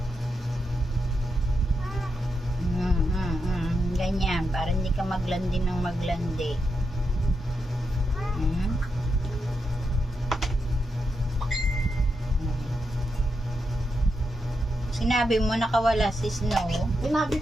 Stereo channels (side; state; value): both; normal; correlation 0.85